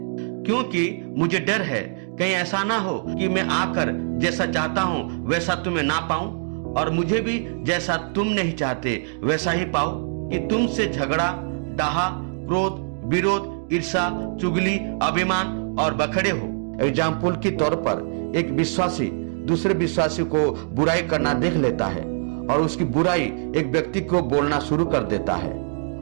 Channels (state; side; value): silent; left; digital silence